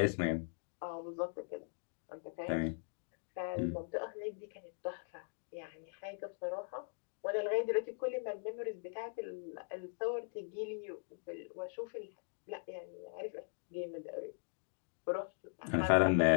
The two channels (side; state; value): right; silent; digital silence